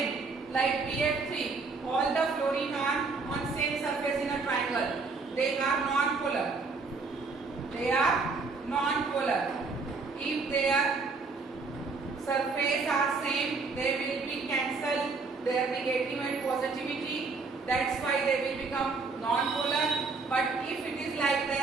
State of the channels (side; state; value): left; quieter; 4.2 dB